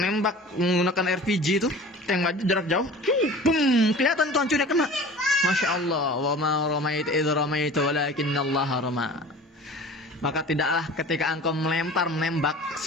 nembak menggunakan RPG itu, yang jarak jauh, boom, kelihatan tuh hancurnya kena. Masya Allah, wa ma ramaita idh ramaita walakinallaha rama. Maka tidaklah ketika engkau menembak,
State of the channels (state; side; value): normal; both; correlation 0.41